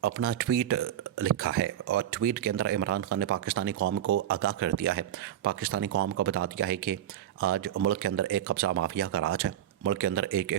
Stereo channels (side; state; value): left; quieter; 11.4 dB